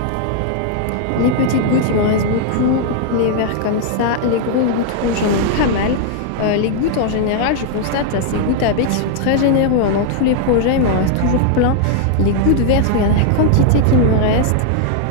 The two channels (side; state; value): both; different; correlation -0.01